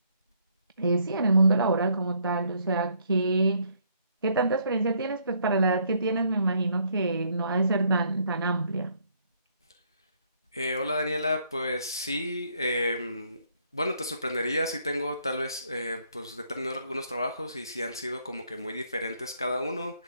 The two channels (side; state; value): both; inverted; correlation -0.69